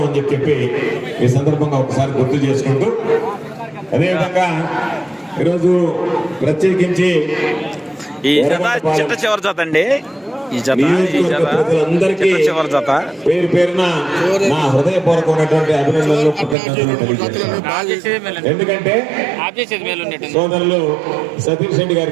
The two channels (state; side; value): drops out; left; at 16.6 s